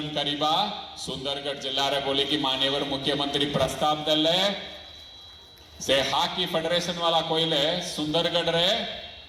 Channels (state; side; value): identical; both; correlation 1.00